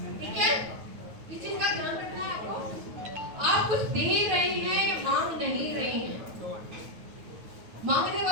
ठीक है? इस चीज का ध्यान रखना है आपको। आप कुछ दे रहे हैं, मांग नहीं रहे हैं। मांगने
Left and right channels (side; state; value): left; late; 9.3 ms